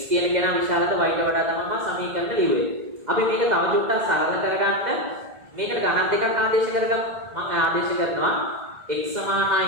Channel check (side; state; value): left; late; 2.0 ms